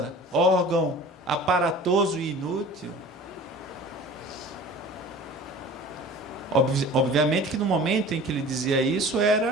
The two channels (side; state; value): both; normal; correlation 0.43